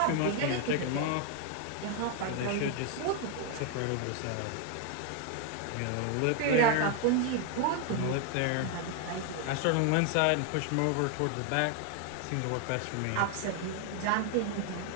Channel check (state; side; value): different; both; correlation 0.01